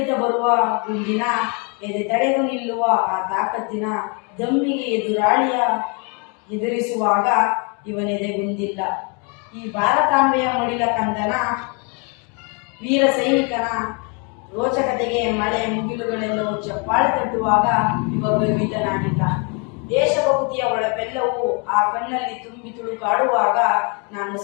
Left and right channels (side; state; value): right; quieter; 34.5 dB